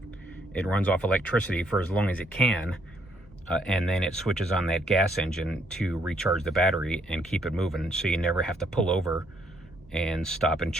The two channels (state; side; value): normal; both; correlation 0.70